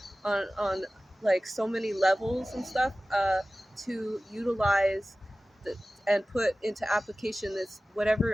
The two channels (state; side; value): normal; both; correlation 0.97